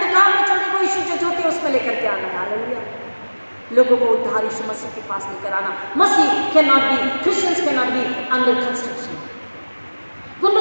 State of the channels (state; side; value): inverted; both; correlation -1.00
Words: में चलने को यीशु जो ज्योति उसमें लेकर के आना है। हालेलुया। लोगों को उद्धार यीशु मसीह के पास लेकर आना। मसीह can not be, Christians can not be under construction.